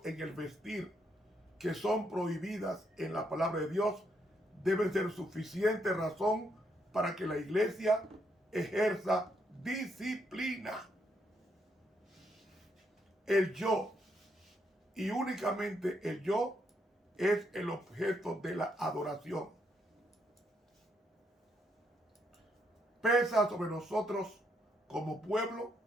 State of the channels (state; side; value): normal; both; correlation 0.76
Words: en el vestir que son prohibidas en la palabra de Dios deben ser suficiente razón para que la iglesia ejerza disciplina. El yo, y únicamente el yo, es el objeto de la adoración. Pesa sobre nosotros como pueblo